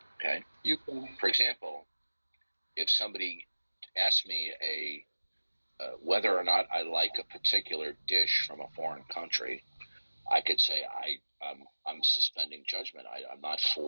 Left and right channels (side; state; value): both; inverted; correlation -1.00